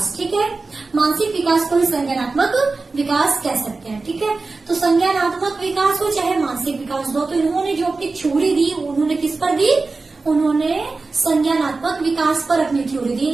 ठीक है। मानसिक विकास को ही संज्ञानात्मक विकास कह सकते हैं, ठीक है। तो संज्ञानात्मक विकास हो चाहे मानसिक विकास हो, तो इन्होंने जो अपनी थ्योरी दी, उन्होंने किस पर दी, उन्होंने संज्ञानात्मक विकास पर अपनी थ्योरी दी।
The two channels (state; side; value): quieter; left; 3.8 dB